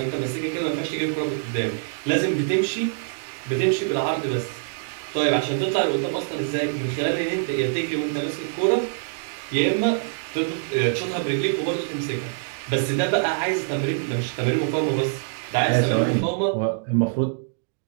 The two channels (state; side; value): silent; left; digital silence